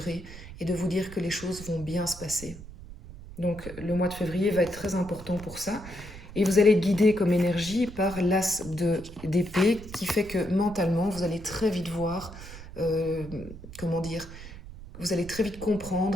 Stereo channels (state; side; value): noise; right; rumble, 14 dB below the sound